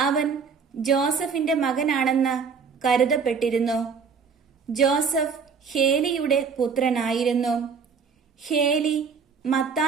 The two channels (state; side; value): quieter; left; 5.7 dB